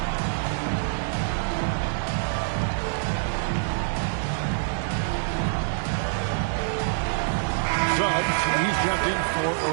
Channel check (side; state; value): left; silent; digital silence